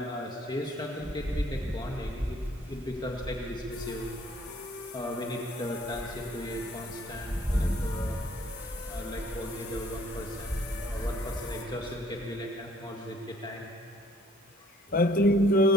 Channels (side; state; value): both; normal; correlation 0.59